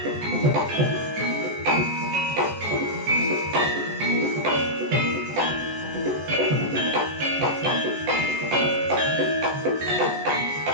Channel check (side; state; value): left; late; 14 ms